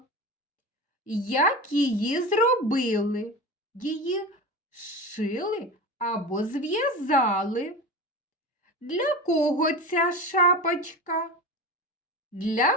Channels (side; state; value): both; normal; correlation 0.27